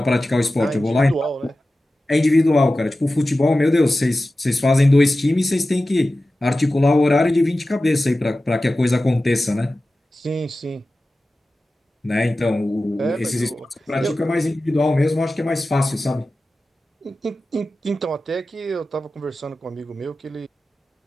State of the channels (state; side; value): normal; both; correlation 0.95